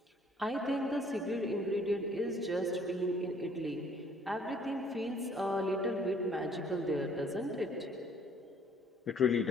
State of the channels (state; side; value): normal; both; correlation 0.59